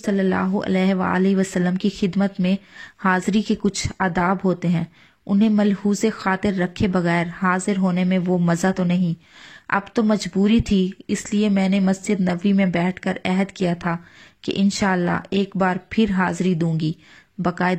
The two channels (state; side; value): identical; both; correlation 1.00